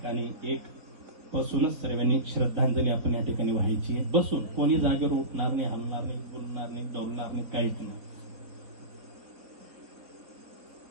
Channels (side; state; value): left; late; 4.5 ms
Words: एक बसूनच सर्वांनी श्रद्धांजली आपण या ठिकाणी व्हायची आहे. बसून, कोणी जागेवर उठणार नाही, हलणार नाही, बोलणार नाही, डोलणार नाही, काहीच नाही.